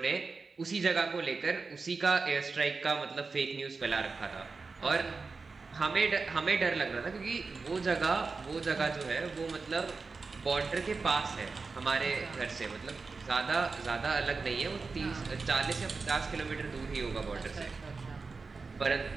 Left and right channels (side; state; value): left; quieter; 4.3 dB